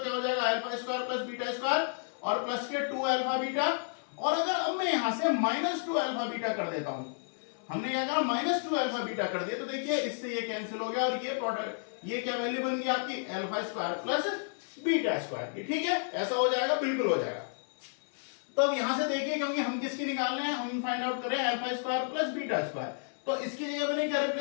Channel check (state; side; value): silent; right; digital silence